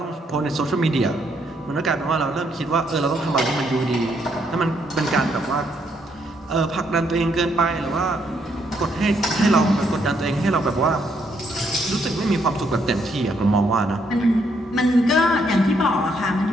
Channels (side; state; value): both; normal; correlation 0.73